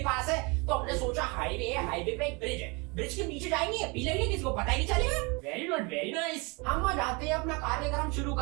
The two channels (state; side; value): quieter; left; 28.8 dB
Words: है? तो हमने सोचा हाईवे है, हाईवे पे एक ब्रिज है, ब्रिज के नीचे जाएंगे, पी लेंगे, किसी को पता ही नहीं चलेगा। Very good, very nice. हम वहाँ जाते हैं, अपना कार्यक्रम शुरू